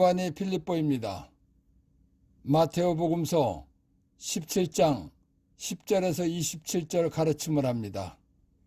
필립보입니다. 마테오복음서 17장 10절에서 27절 가르침을 합니다.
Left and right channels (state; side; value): identical; both; correlation 1.00